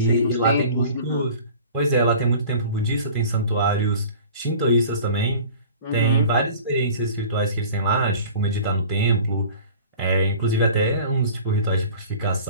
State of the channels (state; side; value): inverted; both; correlation -0.43